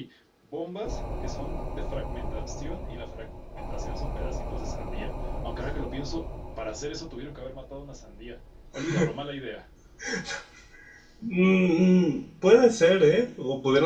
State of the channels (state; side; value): identical; both; correlation 1.00